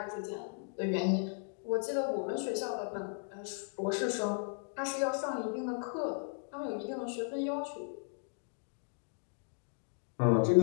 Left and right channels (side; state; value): right; silent; 54 dB below the other